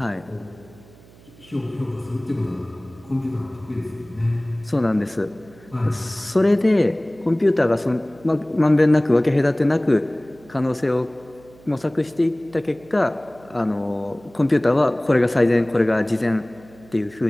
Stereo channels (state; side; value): noise; right; hum, 25 dB below the sound